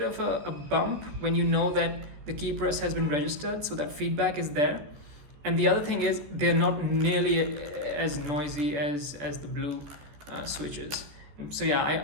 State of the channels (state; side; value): late; left; 14 ms